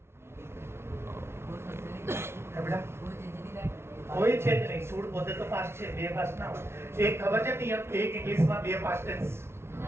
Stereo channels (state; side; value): late; left; 0.12 ms